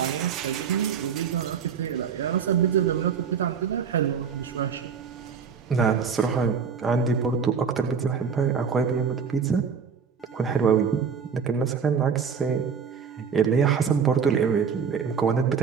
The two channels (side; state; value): left; quieter; 6.5 dB